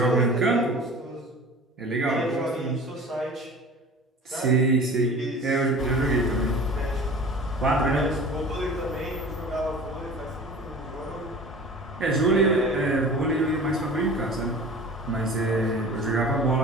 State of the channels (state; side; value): normal; both; correlation 0.40